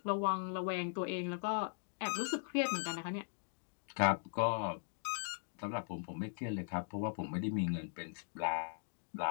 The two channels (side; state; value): right; silent; digital silence